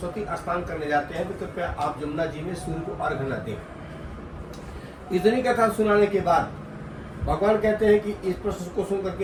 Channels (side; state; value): both; identical; correlation 1.00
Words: स्नान करने जाते हैं तो कृपया आप जमुना जी में सूर्य को अर्घ न दें। इतनी कथा सुनाने के बाद भगवान कहते हैं कि इस प्रश्न को सुन करके